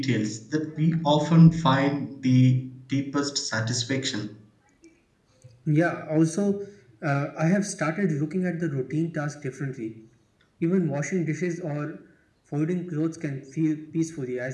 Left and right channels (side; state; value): both; identical; correlation 1.00